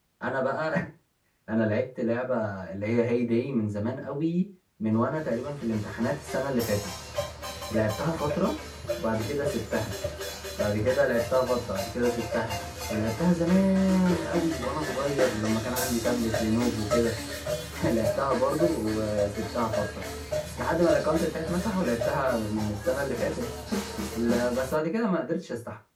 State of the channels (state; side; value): identical; both; correlation 1.00